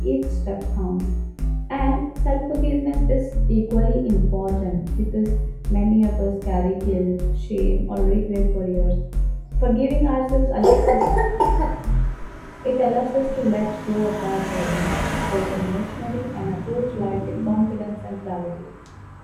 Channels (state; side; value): identical; both; correlation 1.00